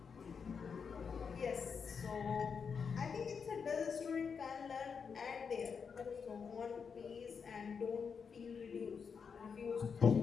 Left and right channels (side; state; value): right; quieter; 6.1 dB